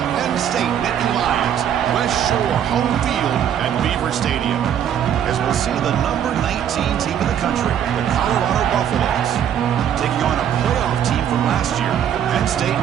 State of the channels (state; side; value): quieter; left; 9.4 dB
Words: Penn State Nittany Lions. West Shore home field at Beaver Stadium. As we'll see the number 19 team in the country, the Colorado Buffaloes, taking on a playoff team from last year, the Penn State